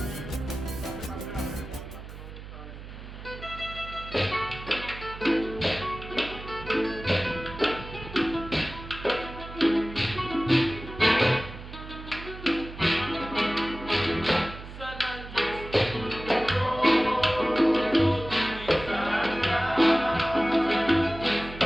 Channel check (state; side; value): noise; right; hum, 13 dB below the sound